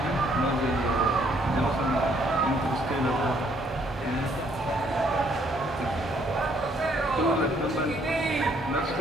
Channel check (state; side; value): normal; both; correlation 0.67